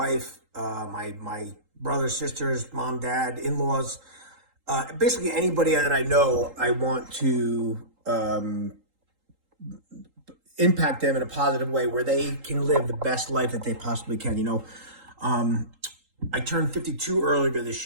my brothers, sisters, mom, dad, in-laws. Basically anybody that I know, I want to impact them in a positive way where they can live the best life that they possibly can. I turned 52 earlier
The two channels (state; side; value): late; left; 3.8 ms